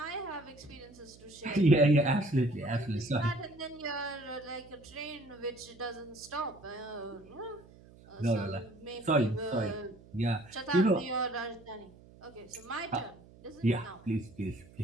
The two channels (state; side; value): noise; right; hum, 23 dB below the sound